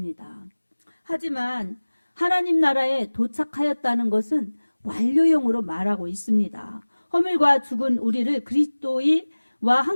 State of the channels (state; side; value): inverted; both; correlation -1.00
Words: 하지만 하나님 나라에 도착하였다는 것은 완료형으로 말하고 있습니다. 허물과 죽은 우리를 그리스도와